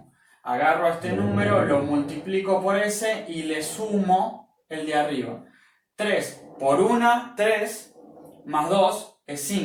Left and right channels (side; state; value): both; identical; correlation 1.00